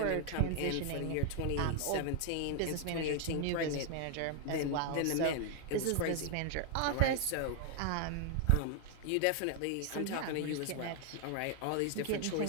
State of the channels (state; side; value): different; both; correlation 0.00